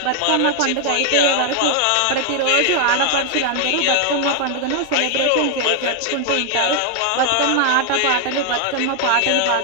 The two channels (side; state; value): both; different; correlation 0.00